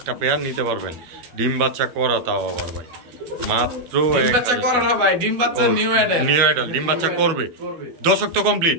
পেয়ার নিতে পারবেন। ডিম বাচ্চা করা তাও আবার ভাই মাত্র ডিম বাচ্চা করা না ভাই, ডিম বাচ্চা নিউ আইডল। নিউ আইডল ডিম বাচ্চা করবে। দশক তো কমপ্লিট?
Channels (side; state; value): left; late; 12 ms